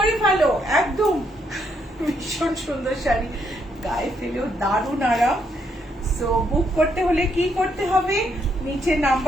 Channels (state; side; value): normal; both; correlation 0.75